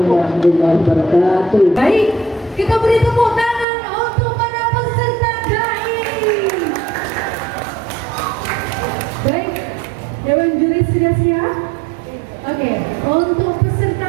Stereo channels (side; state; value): left; drops out; at 3.7 s